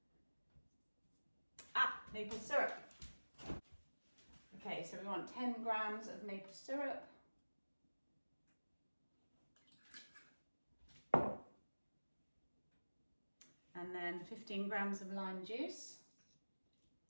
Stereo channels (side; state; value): both; inverted; correlation -1.00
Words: Maple syrup. Okay, so we want 10 grams of maple syrup. And then 15 grams of lime juice.